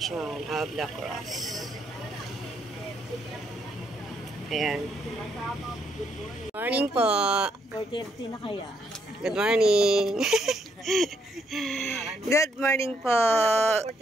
of the cross. Ayan. Morning po. 4:30 na kaya. Good morning. Good morning po.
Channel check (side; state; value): both; normal; correlation 0.74